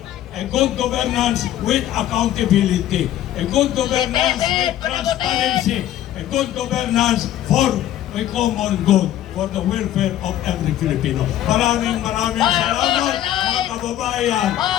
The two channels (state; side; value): quieter; right; 12.5 dB